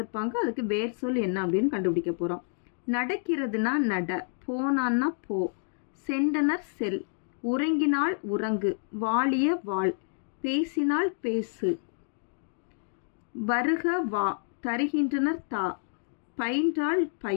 அதுக்கு வேர் சொல் என்ன அப்படின்னு கண்டுபிடிக்க போகிறோம். நடக்கிறதுனா நட, போனான்னா போ, சென்றனர் செல், உறங்கினால் உறங்கு, வாழிய வாழ், பேசினால் பேசு, வருக வா, தருகின்றனர் தா, பயின்றால்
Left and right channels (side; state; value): right; silent; digital silence